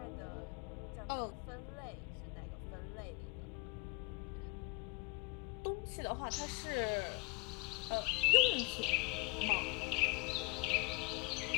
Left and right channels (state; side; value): quieter; right; 28.1 dB